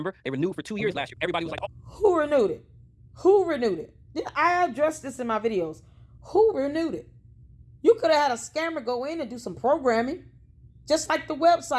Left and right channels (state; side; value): identical; both; correlation 1.00